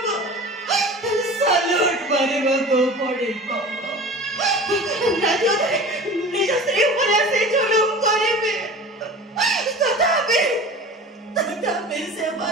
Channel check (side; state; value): both; normal; correlation 0.37